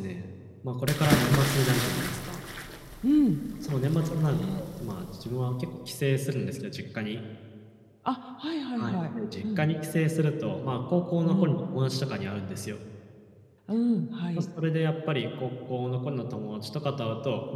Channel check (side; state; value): both; identical; correlation 1.00